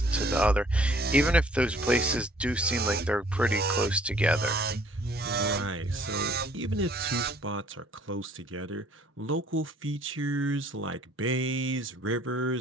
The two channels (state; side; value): normal; both; correlation 0.58